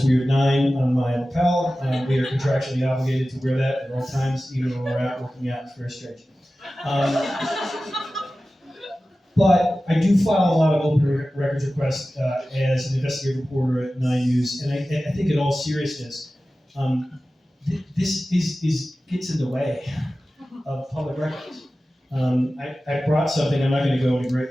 weird 9 on my lapel. We are contractually obligated to wear that at all times, even when we're out working out. It's very strange. But I do file a lot of open records requests as an investigative reporter at 9 News, and I think in all seriousness, this gets in the way of public records. I brought something. I'm not going to go into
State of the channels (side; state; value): both; normal; correlation 0.95